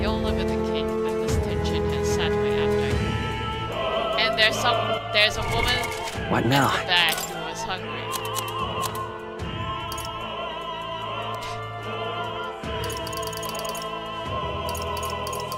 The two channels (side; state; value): both; identical; correlation 1.00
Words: Yola with the cake, but this tension has sat my appetite. And there's a woman What now? at the back who was hungry.